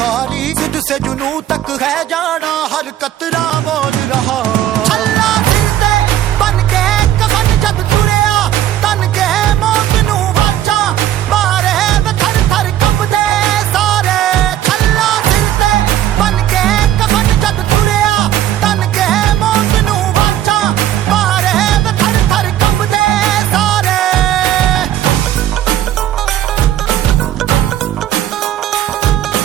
जिद से जुनू तक है जाना, हर कतरा बोल रहा। छल्ला सिर ते बन के कफन जद तुरिया, तन के मौत नू वाचा, मारे वे थर थर कंबदे सारे। छल्ला सिर ते बन के कफन जद तुरिया, तन के मौत नू वाचा, मारे वे थर थर कंबदे सारे।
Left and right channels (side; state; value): left; quieter; 12.1 dB